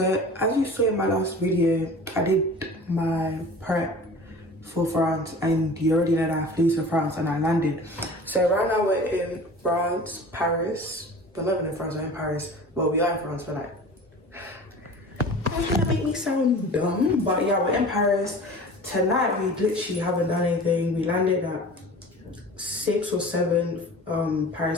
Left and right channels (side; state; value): both; normal; correlation 0.40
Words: as you saw in my last video, I did my prep for France, and you already know that I flew to France and I landed. So right now we're in France, Paris. We're not even in France, we're in Paris. Well, we are in France, but like, that's gonna make me sound dumb. But yeah, we're in Paris. Tonight we literally haven't done anything. We landed at 6 or 7